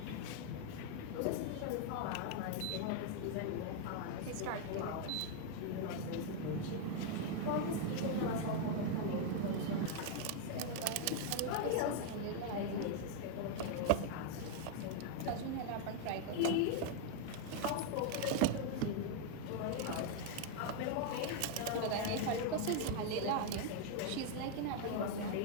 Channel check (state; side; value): different; both; correlation 0.00